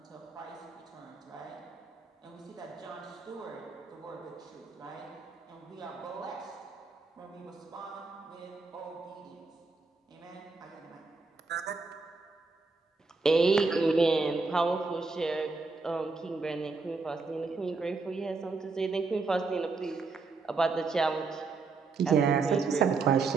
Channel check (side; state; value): left; quieter; 4.1 dB